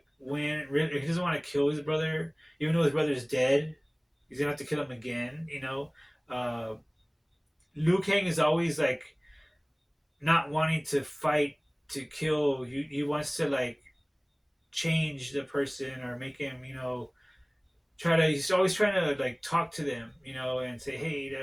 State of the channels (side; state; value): both; identical; correlation 1.00